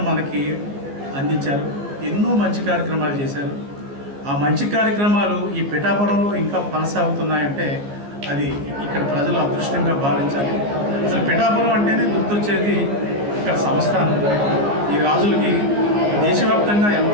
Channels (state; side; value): late; left; 14 ms